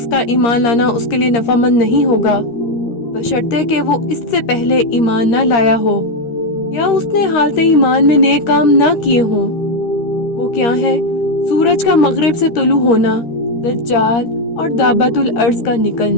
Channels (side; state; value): right; late; 13 ms